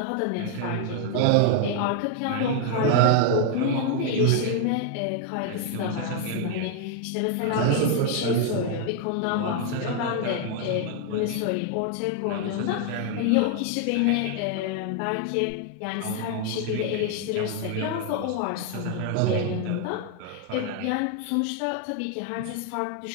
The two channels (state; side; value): different; both; correlation 0.00